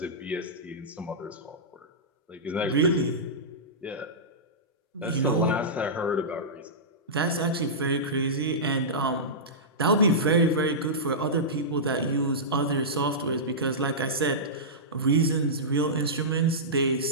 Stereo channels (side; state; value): both; normal; correlation -0.15